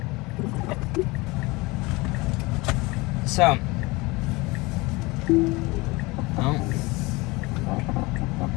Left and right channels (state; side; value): quieter; right; 23.6 dB